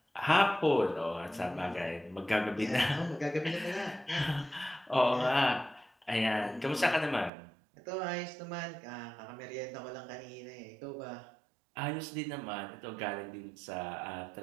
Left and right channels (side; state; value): left; drops out; at 7.3 s